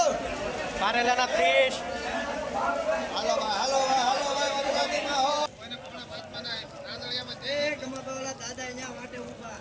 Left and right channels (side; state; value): both; identical; correlation 1.00